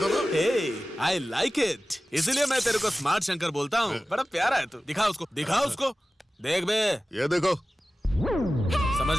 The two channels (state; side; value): normal; both; correlation 0.96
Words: ना। आई लाइक इट, इसीलिए मैं तेरे को स्मार्ट शंकर बोलता हूँ। बड़ा प्यारा है तू। दिखा उसको, दिखा उसको। देख बे, ये देखो। समझ